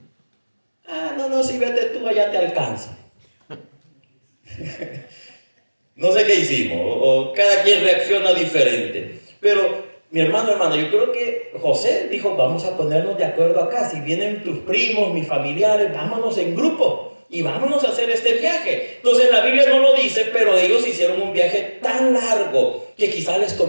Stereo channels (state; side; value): inverted; both; correlation -1.00